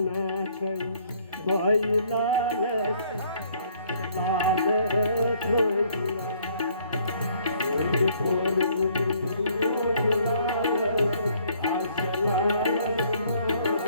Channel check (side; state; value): both; inverted; correlation -0.63